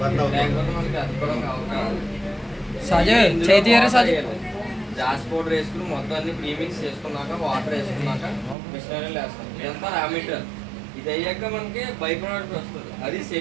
మనకి అతుక్కోవడం అవకాశం. జాస్ పౌడర్ వేసుకుని మొత్తం అన్ని ప్రీమిక్స్ చేసుకున్నాక వాటర్ వేసుకున్నాక మిషనరీలు వేస్తాం. ఇదంతా రా మెటీరియల్. ఇది అయ్యాక మనకి బై ప్రోడక్ట్ వస్తుంది, అది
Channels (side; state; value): left; drops out; at 8.6 s